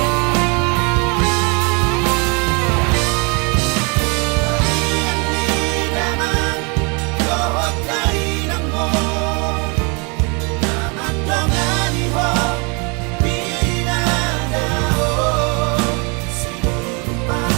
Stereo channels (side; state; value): left; quieter; 32.3 dB